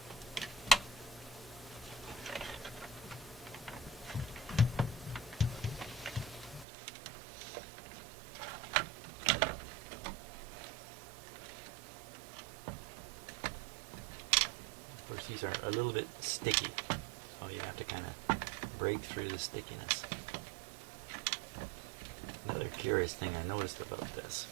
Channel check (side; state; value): left; drops out; at 6.7 s